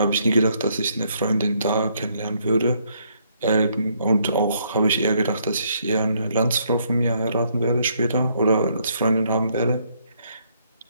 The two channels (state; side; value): inverted; both; correlation -0.71